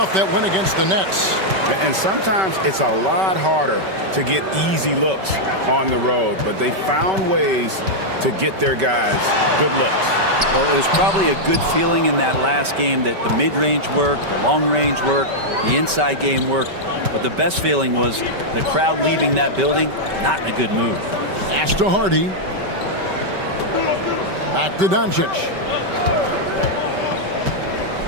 that win against the Nets. And sometimes it's a lot harder to get easy looks on the road, but they found ways to get their guys good looks. Well, it was probably a good feeling in that last game that the mid-range worked, the long-range worked, the inside game worked. But the best feeling was the crowd leaving that building not in a good mood. Pass to Hardy. Back to Doncic.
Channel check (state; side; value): late; left; 5.2 ms